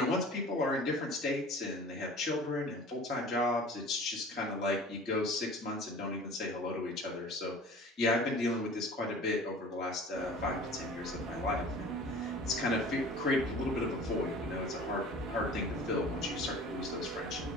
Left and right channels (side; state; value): both; normal; correlation 0.43